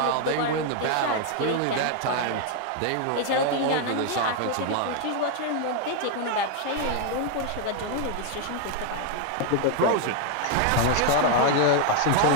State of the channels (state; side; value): different; both; correlation 0.00